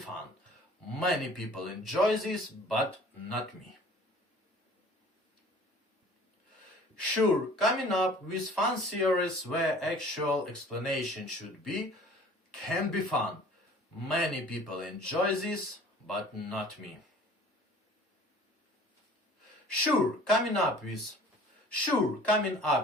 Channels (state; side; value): normal; both; correlation 0.48